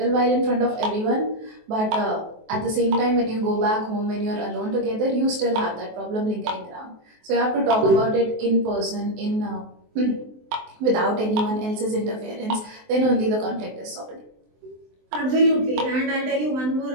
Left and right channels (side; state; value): left; late; 23 ms